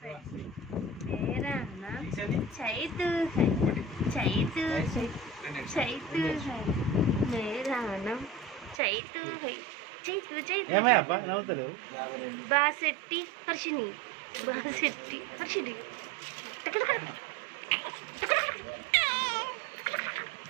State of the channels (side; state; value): left; drops out; at 8.8 s